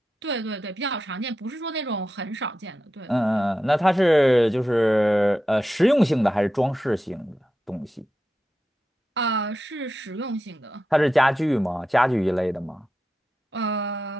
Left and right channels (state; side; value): normal; both; correlation 0.90